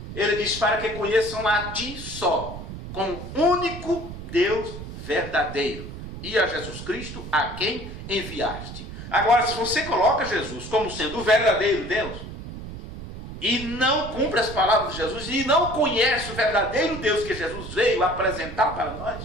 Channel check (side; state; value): right; noise; rumble, 10 dB below the sound